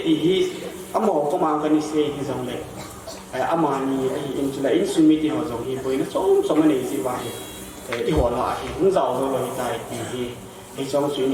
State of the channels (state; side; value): identical; both; correlation 1.00